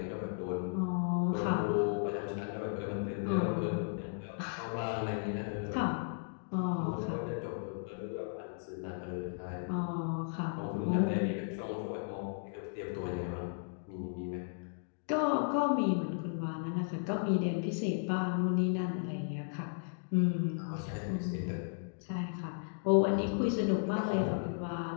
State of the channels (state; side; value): silent; right; digital silence